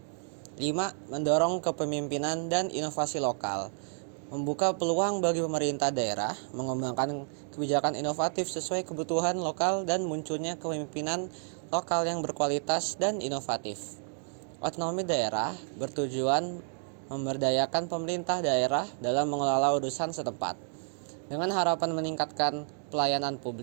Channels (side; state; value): left; silent; 57 dB below the other